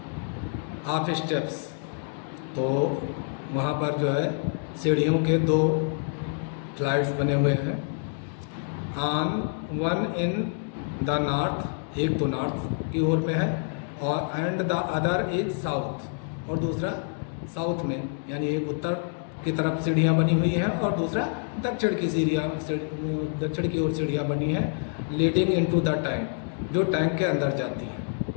of steps. तो वहाँ पर जो है सीढ़ियों के 2 फ्लाइट्स बने हुए हैं। On one in the north, एक तो नॉर्थ की ओर में है, और and the other is south, और दूसरा साउथ में, यानी एक उत्तर की तरफ सीढ़ियाँ बनी हुई हैं और दूसरा दक्षिण की ओर सीढ़ियाँ बनी हैं, लीडिंग इनटू द टैंक, जो टैंक के अंदर जाती हैं।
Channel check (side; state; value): right; silent; 60 dB below the other